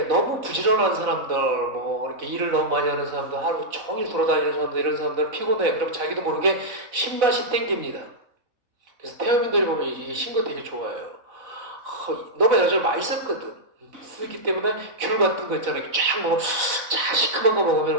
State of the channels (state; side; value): late; left; 4.0 ms